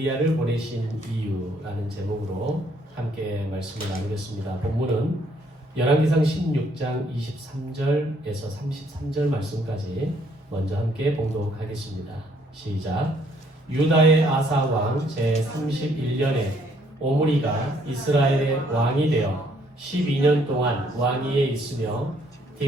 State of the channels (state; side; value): normal; both; correlation 0.67